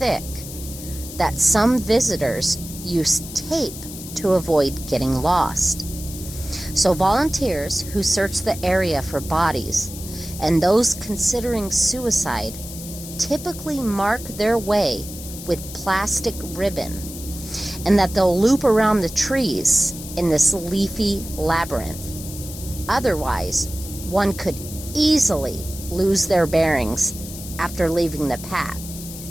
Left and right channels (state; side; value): noise; left; hiss, 12 dB below the sound